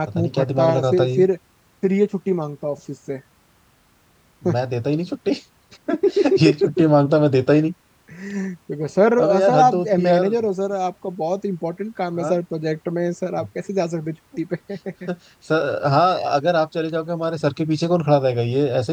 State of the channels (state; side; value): identical; both; correlation 1.00